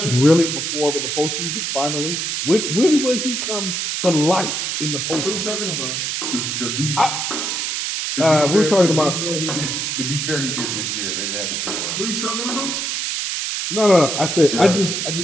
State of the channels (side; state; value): right; noise; hiss, 1 dB below the sound